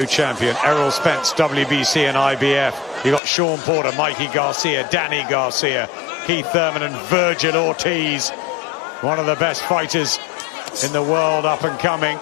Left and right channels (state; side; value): drops out; right; at 3.2 s